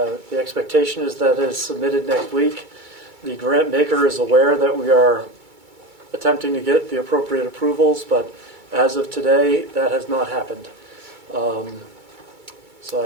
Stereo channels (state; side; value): late; left; 2.3 ms